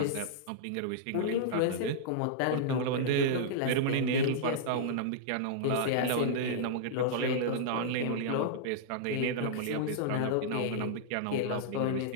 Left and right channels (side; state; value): both; different; correlation -0.02